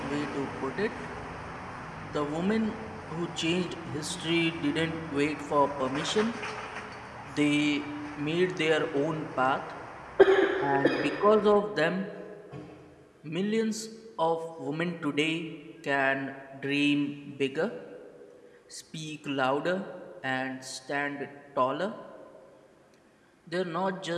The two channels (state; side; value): identical; both; correlation 1.00